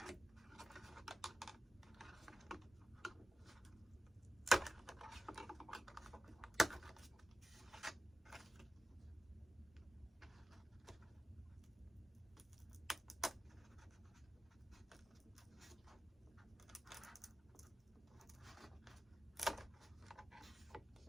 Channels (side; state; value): both; normal; correlation 0.94